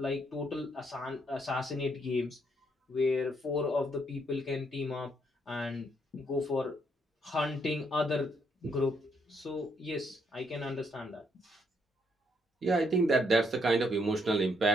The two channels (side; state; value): both; normal; correlation 0.73